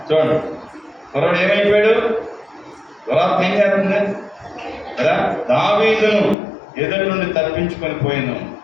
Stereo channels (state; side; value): drops out; right; at 6.4 s